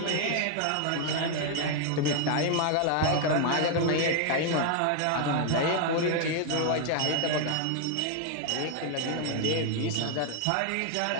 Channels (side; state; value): both; different; correlation 0.01